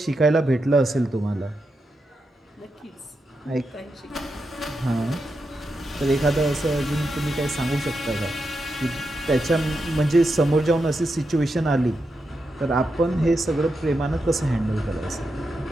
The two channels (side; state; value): both; normal; correlation 0.86